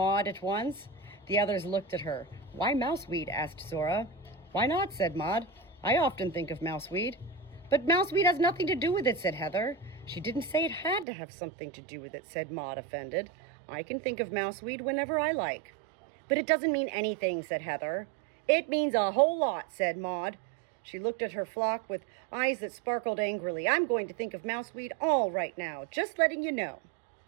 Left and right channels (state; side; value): drops out; left; at 11.1 s